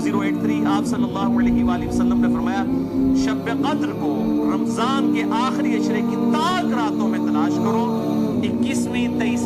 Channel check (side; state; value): both; identical; correlation 1.00